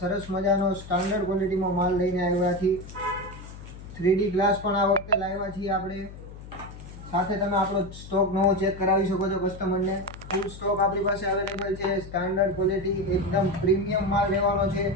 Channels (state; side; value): noise; left; hum, 14 dB below the sound